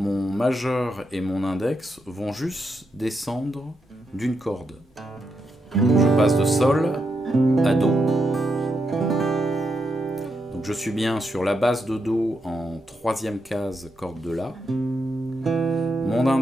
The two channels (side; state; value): both; normal; correlation 0.83